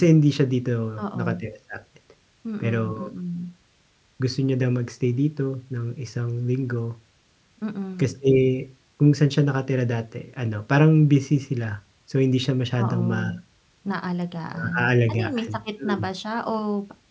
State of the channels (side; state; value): both; identical; correlation 1.00